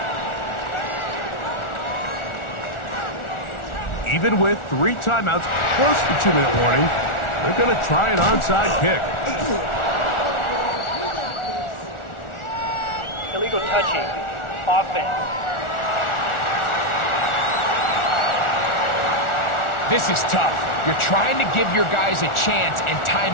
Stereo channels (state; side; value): late; right; 1.4 ms